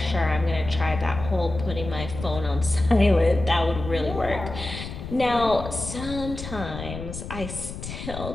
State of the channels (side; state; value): left; noise; rumble, 9 dB below the sound